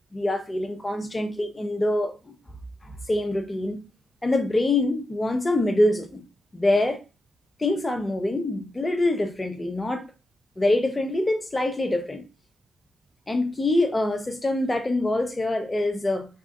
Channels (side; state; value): both; normal; correlation 0.90